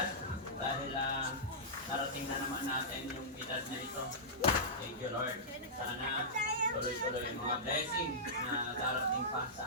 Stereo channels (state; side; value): normal; both; correlation -0.15